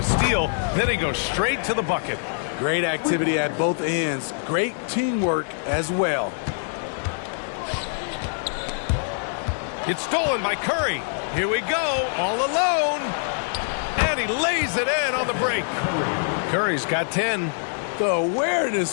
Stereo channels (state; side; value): silent; right; digital silence